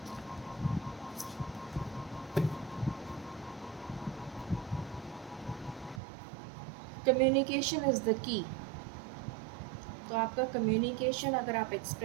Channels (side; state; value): left; drops out; at 6.0 s